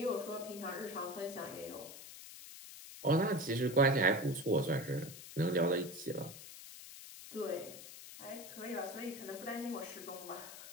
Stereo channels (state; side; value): noise; left; hiss, 13 dB below the sound